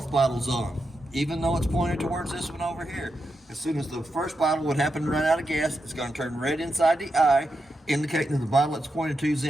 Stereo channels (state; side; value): normal; both; correlation 0.86